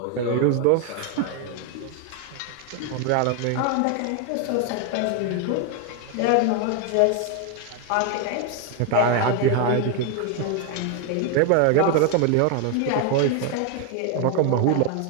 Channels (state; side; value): different; both; correlation 0.01